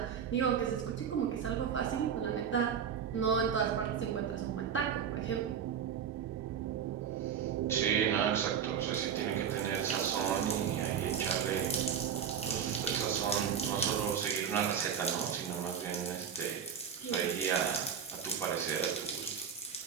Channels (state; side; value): quieter; left; 7.8 dB